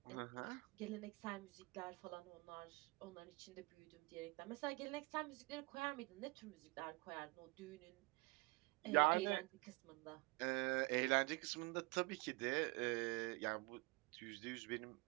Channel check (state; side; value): quieter; left; 26.2 dB